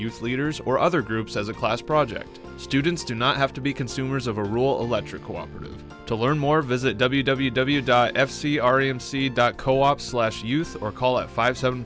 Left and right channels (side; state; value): both; identical; correlation 1.00